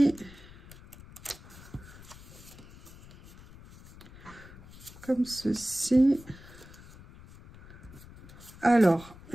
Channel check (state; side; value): noise; left; rumble, 19 dB below the sound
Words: Comme ceci. Alors,